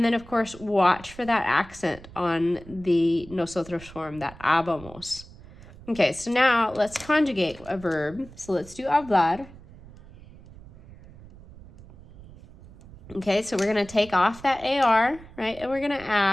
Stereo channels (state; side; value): noise; right; rumble, 20 dB below the sound